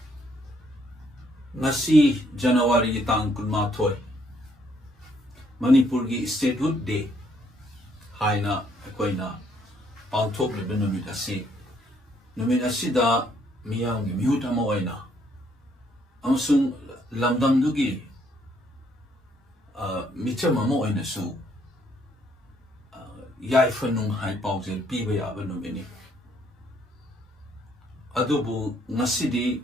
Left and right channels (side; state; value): both; normal; correlation 0.69